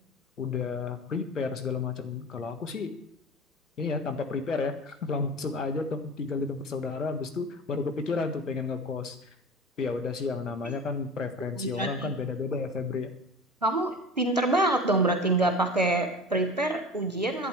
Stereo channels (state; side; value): normal; both; correlation 0.35